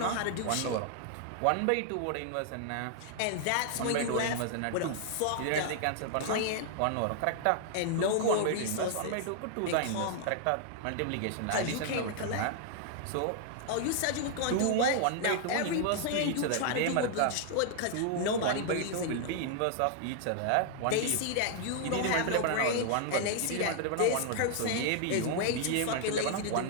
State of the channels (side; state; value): both; different; correlation 0.00